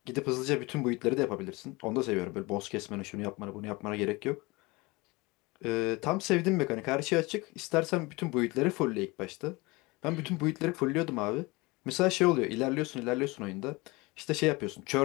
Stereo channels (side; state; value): right; quieter; 24.0 dB